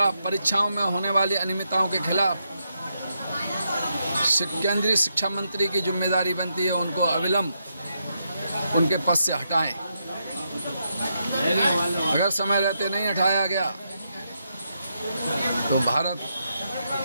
परीक्षाओं में होने वाली अनियमितताओं के खिलाफ केंद्रीय शिक्षा मंत्री की जिम्मेदारी बनती है उनको अविलंब उनके पद से हटाएं। अगर समय रहते नहीं हटाया गया तो भारत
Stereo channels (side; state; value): both; inverted; correlation -0.81